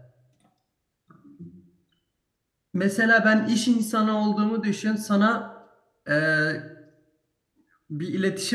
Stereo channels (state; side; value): identical; both; correlation 1.00